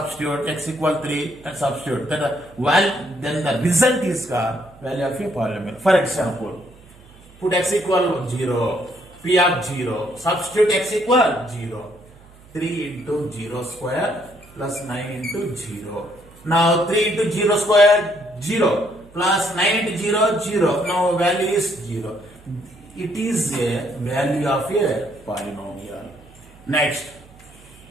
x equal 3, and substitute. Then the result is called value of a polynomial. For example, put x equal 0, p of 0, substitute x equal 0, 3 into 0 square plus 9 into 0. Now 3 into 0 square 0 plus 9 into 0 0. Now value is 0. It is a value of a polynomial. Next,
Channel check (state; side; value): noise; right; hum, 24 dB below the sound